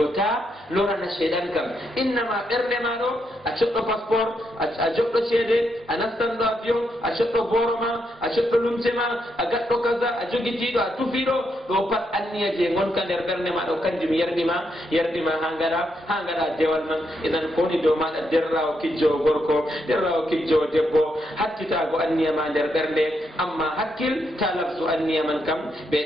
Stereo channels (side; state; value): both; normal; correlation 0.80